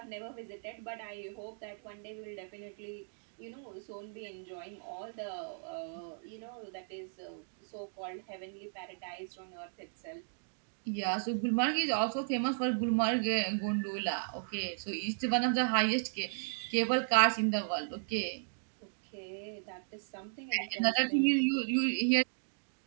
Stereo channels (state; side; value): silent; left; digital silence